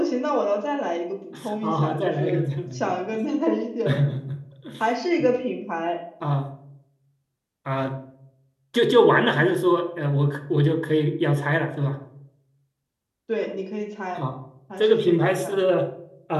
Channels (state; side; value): identical; both; correlation 1.00